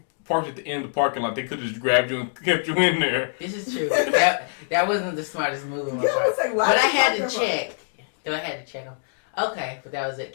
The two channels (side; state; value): right; silent; digital silence